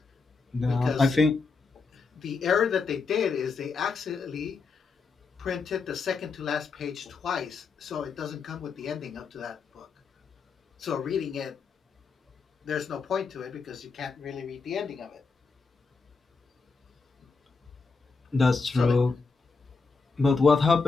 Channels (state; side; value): quieter; right; 4.6 dB